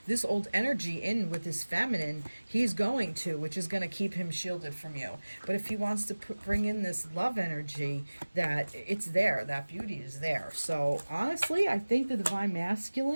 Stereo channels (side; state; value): both; inverted; correlation -1.00